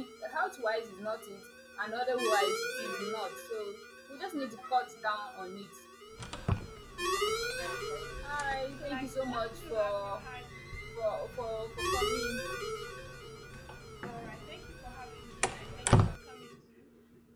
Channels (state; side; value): identical; both; correlation 1.00